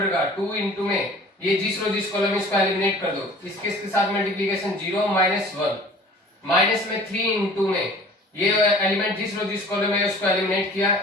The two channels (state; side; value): normal; both; correlation 0.47